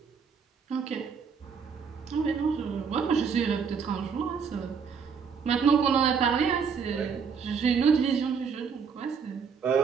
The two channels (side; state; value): left; quieter; 6.2 dB